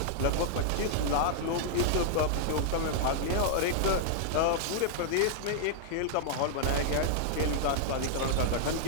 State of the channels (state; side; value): different; both; correlation -0.01